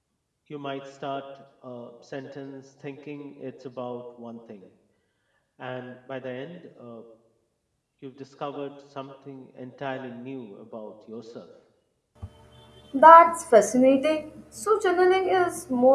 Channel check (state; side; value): identical; both; correlation 1.00